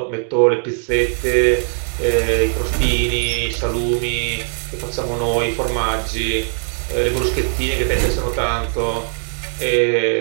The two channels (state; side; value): silent; left; 58 dB below the other